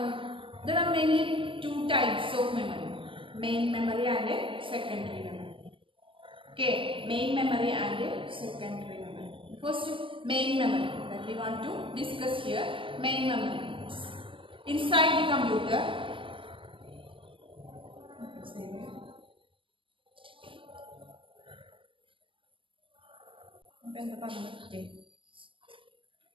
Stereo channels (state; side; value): late; left; 0.25 ms